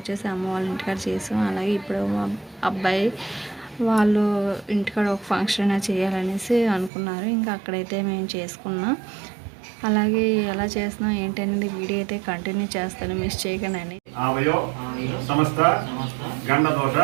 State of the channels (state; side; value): drops out; left; at 6.9 s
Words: అమ్మ వాళ్ళ ఇంటికాడ చేసాం. అలాగే ఇప్పుడు మా అబ్బాయి వాళ్ళు ఇంటికాడ ఒక ఫంక్షన్ చేయాలనేసి అనుకున్నారు. ఇంకా అక్కడైతే మేము చేసుకున్నాం. అలాగే ఎలా చేస్తున్నాం ఏంటి అనేది వీడియో అయితే కంటిన్యూ చేస్తాను, మిస్ చేయకండి అని. సమస్త గండదోష